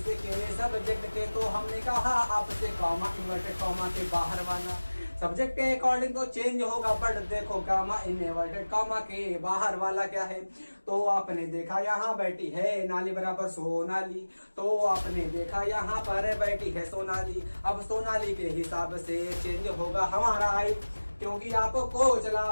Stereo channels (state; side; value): inverted; both; correlation -1.00